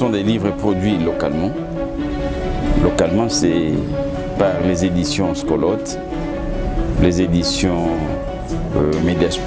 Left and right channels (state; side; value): identical; both; correlation 1.00